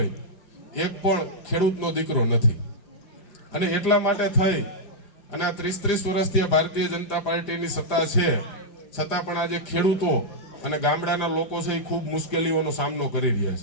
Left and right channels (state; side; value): late; right; 4.9 ms